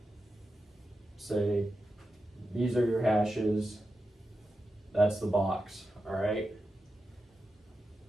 say, these are your hashes. That's the box, all right?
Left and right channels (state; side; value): normal; both; correlation 0.90